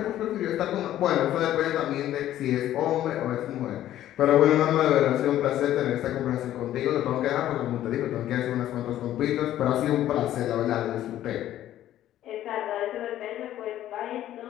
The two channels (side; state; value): right; quieter; 12.7 dB